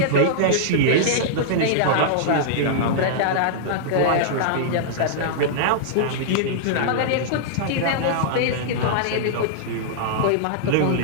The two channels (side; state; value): both; different; correlation -0.02